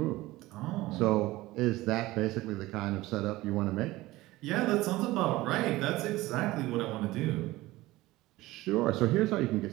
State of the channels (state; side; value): quieter; left; 18.4 dB